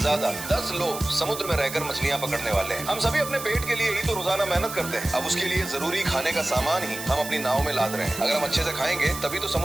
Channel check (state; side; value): noise; right; hiss, 9 dB below the sound